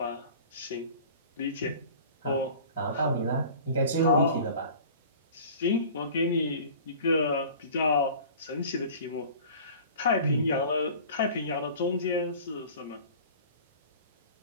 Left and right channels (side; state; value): both; inverted; correlation -0.43